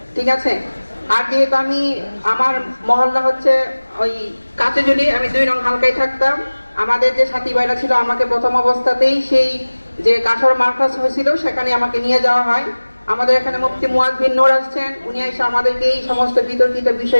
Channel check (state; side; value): inverted; both; correlation -1.00